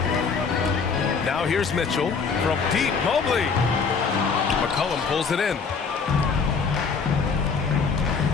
Now here's Mitchell from deep. Mobley. McCollum pulls it in.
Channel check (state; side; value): quieter; right; 5.3 dB